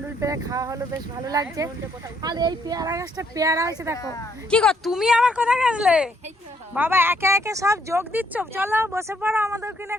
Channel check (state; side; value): normal; both; correlation 0.70